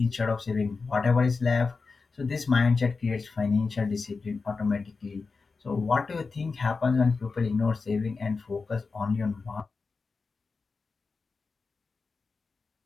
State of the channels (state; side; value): quieter; right; 4.4 dB